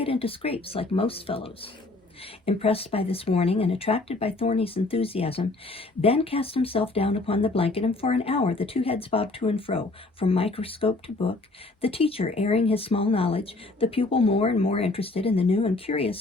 into scrapes like most fellows. Impressed by this warning and attracted by Thorny's enthusiasm, Ben cast himself down upon the blanket, and for an hour the two heads bobbed to and fro, from microscope to book, the teacher airing his small knowledge, the pupil more and more interested in the new and curious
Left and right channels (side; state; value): right; quieter; 3.1 dB